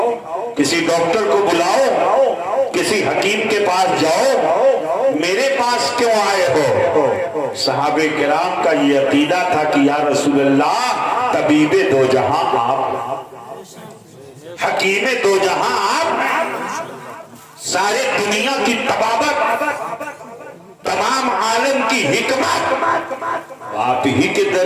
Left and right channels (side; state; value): both; identical; correlation 1.00